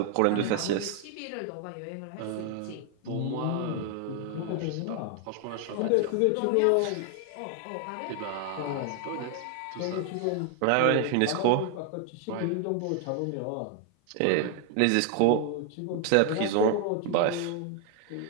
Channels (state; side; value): different; both; correlation 0.00